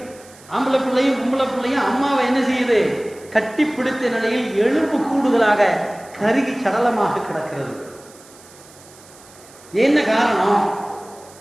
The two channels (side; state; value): right; noise; hiss, 23 dB below the sound